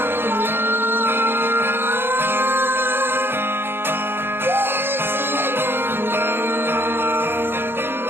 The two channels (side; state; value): left; late; 0.11 ms